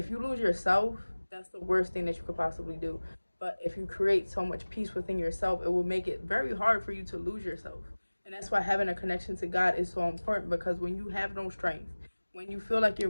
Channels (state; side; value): inverted; both; correlation -1.00